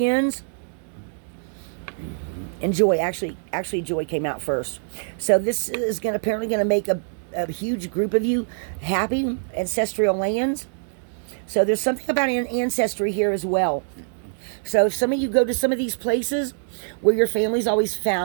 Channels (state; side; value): silent; left; digital silence